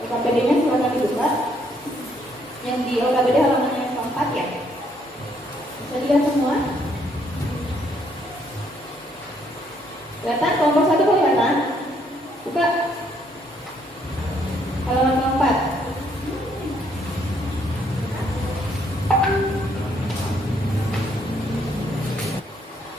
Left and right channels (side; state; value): both; normal; correlation 0.69